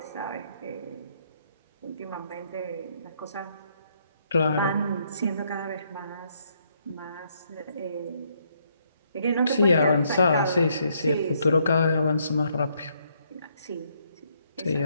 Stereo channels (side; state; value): both; inverted; correlation -0.72